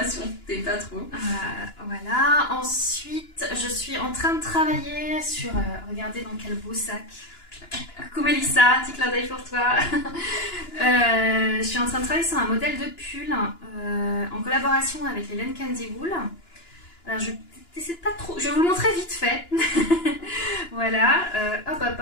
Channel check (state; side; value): late; right; 2.9 ms